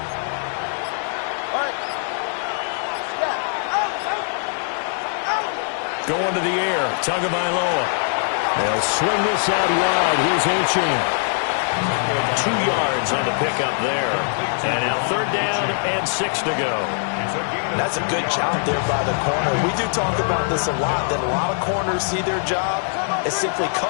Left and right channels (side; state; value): right; silent; digital silence